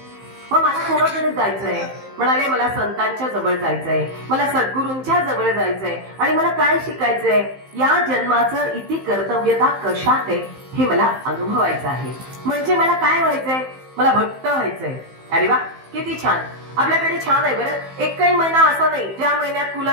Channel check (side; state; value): left; late; 15 ms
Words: मग मला कोणाकडे जायचंय, म्हणाले मला संतांच्या जवळ जायचंय, मला सद्गुरूंच्या जवळ जायचंय, आणि मला काय शिकायचंय, या जन्माचं इति कर्तव्यता कशात आहे हे मला अनुभवायचं आहे. म्हणजे मला काय व्हायचंय, मला भक्त व्हायचंय. अरे वा किती छान, आपल्याकडे छान आहे बरं. एकही महिना असा नाही ज्या महिन्यात